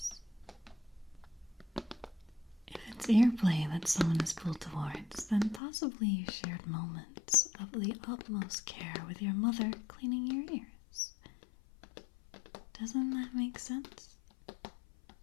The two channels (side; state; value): right; drops out; at 5.6 s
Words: If it's ear play that someone is pulled towards, then possibly you shared moments of the utmost care with your mother cleaning your ears. Doesn't that make sense?